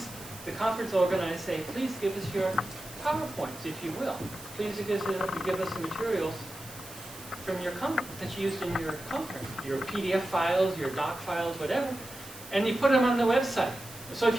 the conference organizers say, please give us your PowerPoints, if you will. Please give us the materials from your that you used in your conference, your PDF files, your doc files, whatever, and you put them on the website. So if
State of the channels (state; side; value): noise; right; hiss, 15 dB below the sound